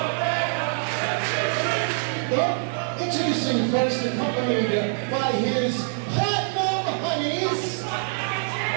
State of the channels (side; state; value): left; silent; 62 dB below the other